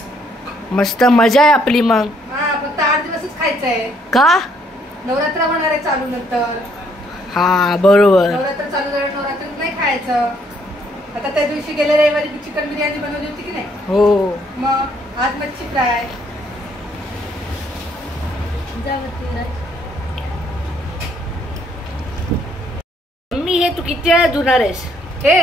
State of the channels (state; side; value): normal; both; correlation 0.68